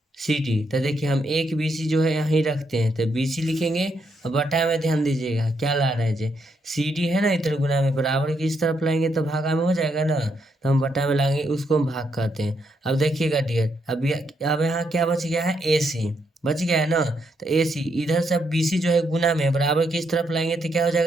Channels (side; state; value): both; normal; correlation 0.77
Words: C D. तो देखिए हम एक बी सी जो है यहीं रखते हैं, तो बी सी लिखेंगे। और बटा में ध्यान दीजिएगा क्या ला रहे हैं जे, सी डी है ना, इधर गुना में बराबर की इस तरफ लाएंगे तो भागा में हो जाएगा ना। तो हम बटा में लाएंगे, उसको हम भाग कहते हैं। अब देखिएगा डियर, अब यहाँ क्या बच गया है? ए सी बच गया है ना। तो ए सी इधर से बी सी जो है गुना में बराबर की इस तरफ लाएंगे तो क्या हो